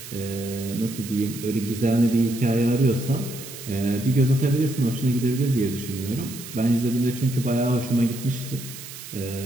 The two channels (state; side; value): noise; right; hiss, 13 dB below the sound